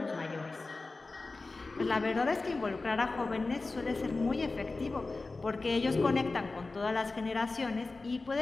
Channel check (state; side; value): quieter; right; 3.6 dB